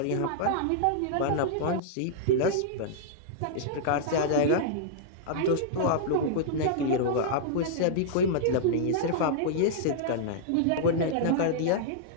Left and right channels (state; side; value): different; both; correlation -0.02